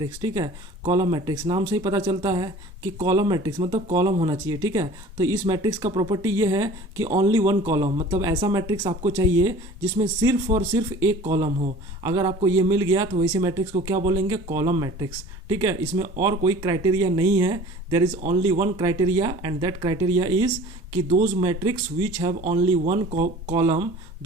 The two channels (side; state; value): both; normal; correlation 0.45